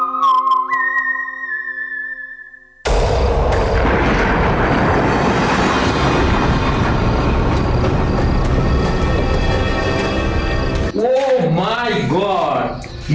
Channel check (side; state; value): both; identical; correlation 1.00